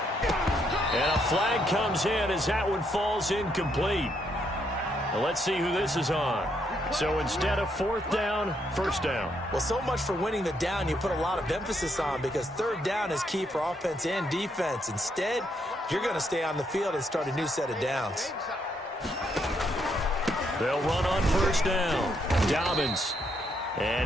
And a flag comes in as that one falls incomplete. Well, let's see who this is on. So instead of 4th down, 1st down. Well, so much for winning the down you put a lot of emphasis on, because 3rd down is key for offense and defense. Instead, you're going to stay on the field and start a new set of downs. They'll run on 1st down. Dobbins.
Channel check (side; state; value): both; normal; correlation 0.75